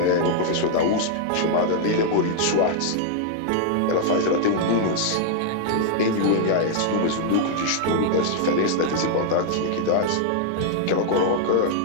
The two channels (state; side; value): different; both; correlation -0.01